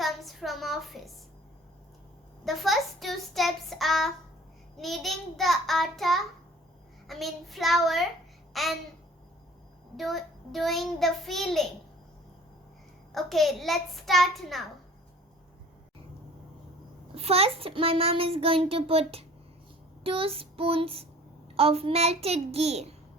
from office. The first 2 steps are kneading the flour and doing the filling. Okay, let's start now. First, my mom is going to put 2 spoons of melted ghee.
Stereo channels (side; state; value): both; normal; correlation 0.49